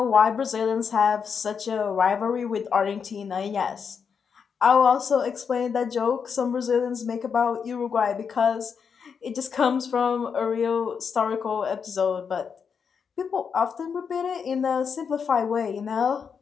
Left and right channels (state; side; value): quieter; right; 6.4 dB